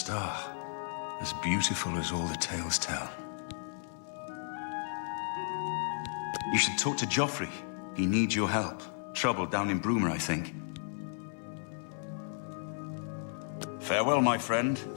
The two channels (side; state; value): right; silent; 55 dB below the other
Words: As beautiful as all the tales tell. You should talk to Joffrey. He needs your help. Trouble down in Bruma, I think. Farewell, my friend.